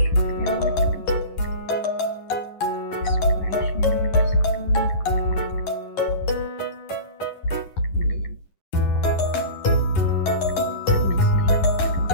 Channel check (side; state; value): right; late; 11 ms